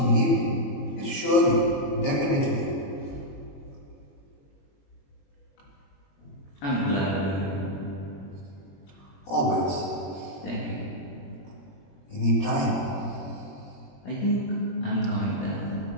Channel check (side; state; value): right; late; 21 ms